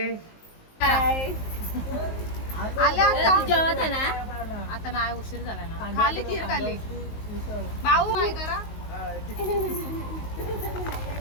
आले आता जेवत आहे ना आता नाही उशीर झाला ना खाली खीर खाली भाऊ काय करा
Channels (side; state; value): right; late; 19 ms